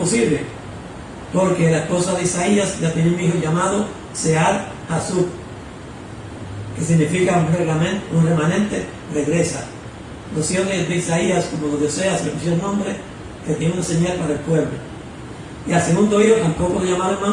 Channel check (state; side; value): identical; both; correlation 1.00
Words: porque la esposa de Isaías ya tiene un hijo llamado Sear Hasub, que significa un remanente regresa. Los hijos de Isaías, como los de Oseas, le pusieron nombre que tiene una señal para el pueblo. Y al segundo hijo tampoco lo llamaron